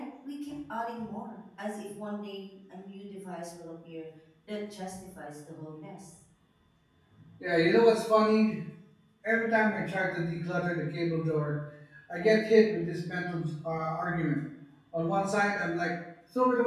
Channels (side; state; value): both; identical; correlation 1.00